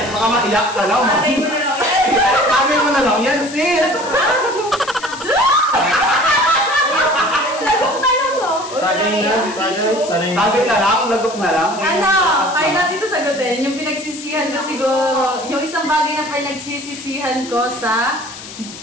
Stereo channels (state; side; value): noise; left; hiss, 14 dB below the sound